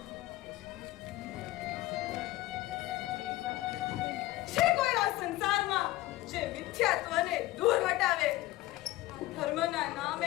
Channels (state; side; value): quieter; right; 17.4 dB